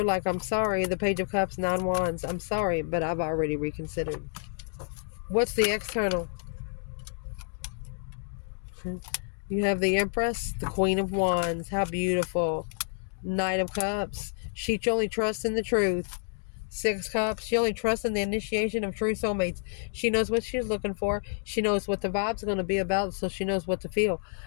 like, I'm sorry, the Page of Cups, 9 Wands. I'm sorry, but I've already reconsidered. What's the external? You have the Empress, the Queen of Wands. How beautiful. Knight of Cups. She only trusts in the truth. Six Cups. She only trusts in the initiation of true soulmates. She knows what she's looking for. She knows what the vibes are going to be about, so she knows what to feel.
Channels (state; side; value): silent; right; 59 dB below the other